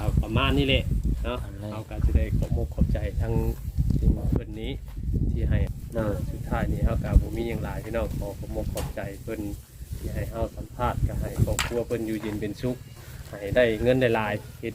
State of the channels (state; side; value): identical; both; correlation 1.00